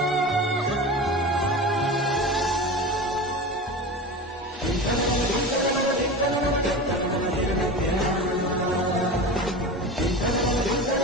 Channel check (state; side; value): normal; both; correlation 0.29